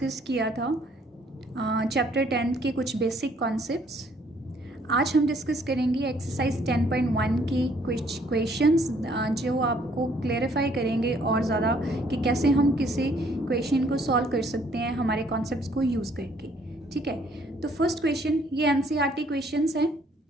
किया था चैप्टर 10 के कुछ बेसिक कॉन्सेप्ट्स। आज हम डिस्कस करेंगे एक्सरसाइज 10.1 के कुछ क्वेश्चंस जो आपको क्लेरिफाई करेंगे और ज़्यादा कि कैसे हम किसी क्वेश्चन को सॉल्व कर सकते हैं हमारे कॉन्सेप्ट्स को यूज़ करके। ठीक है, तो फर्स्ट क्वेश्चन ये एनसीईआरटी क्वेश्चंस हैं,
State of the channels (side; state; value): both; normal; correlation 0.64